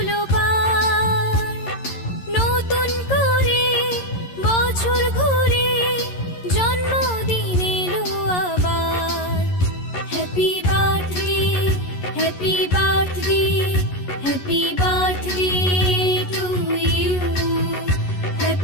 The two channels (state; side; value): late; right; 11 ms